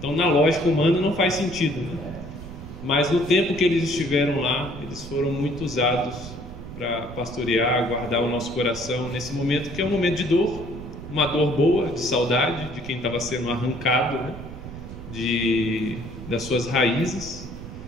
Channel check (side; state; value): right; noise; rumble, 11 dB below the sound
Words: na lógica humana não faz sentido, né? Mas no tempo que eles estiveram lá, eles foram muito usados para pastorear, guardar o nosso coração nesse momento que é um momento de dor, uma dor boa, de saudade de quem estava sendo arrancado, né? Das suas raízes,